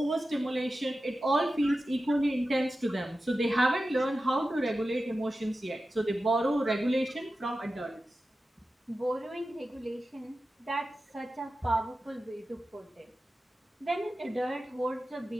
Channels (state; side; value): normal; both; correlation 0.93